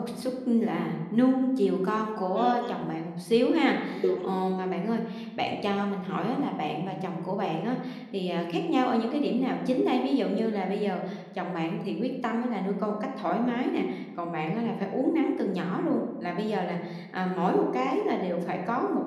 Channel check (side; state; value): both; identical; correlation 1.00